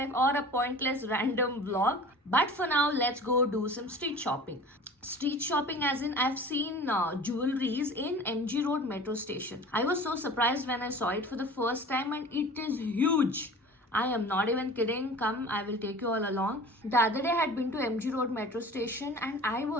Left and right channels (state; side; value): normal; both; correlation 0.41